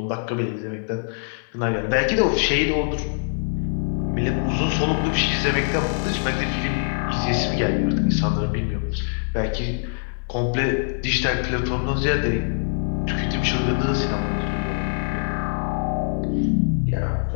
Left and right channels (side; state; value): right; silent; digital silence